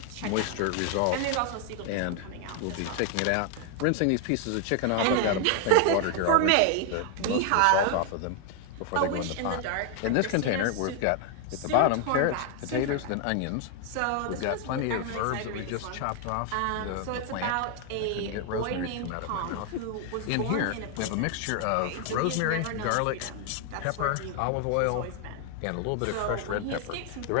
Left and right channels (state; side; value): different; both; correlation 0.00